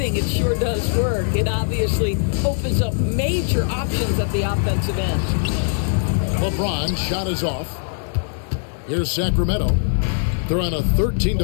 it sure does work. It obviously opens up major options at the offensive end. LeBron shot is off. Here's Sacramento. They're on a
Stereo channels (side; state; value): right; silent; 65 dB below the other